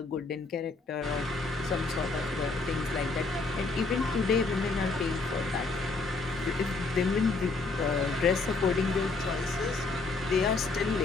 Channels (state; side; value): quieter; right; 3.8 dB